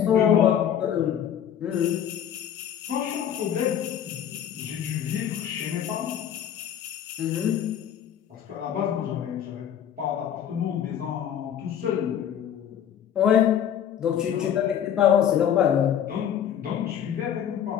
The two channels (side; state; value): right; quieter; 9.5 dB